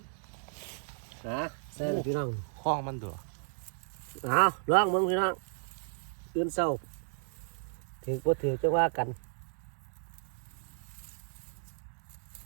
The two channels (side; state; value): left; silent; digital silence